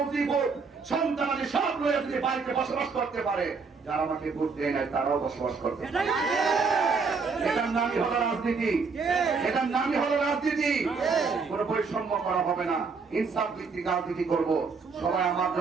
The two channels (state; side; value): quieter; left; 4.9 dB